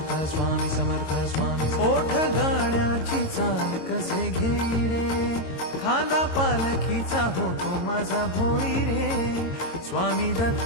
ओठ गाण्याची चाल कसे घेई रे, खांदा पालखीचा होतो माझा भोई रे. स्वामी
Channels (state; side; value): late; right; 22 ms